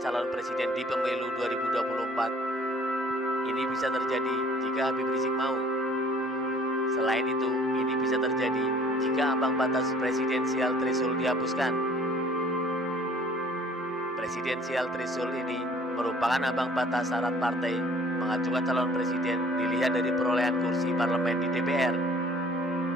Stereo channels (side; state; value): both; normal; correlation 0.54